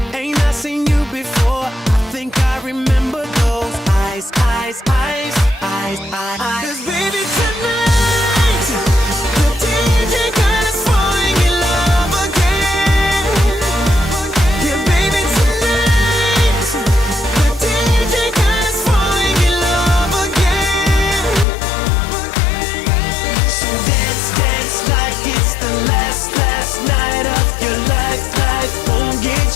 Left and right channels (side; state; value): right; drops out; at 21.5 s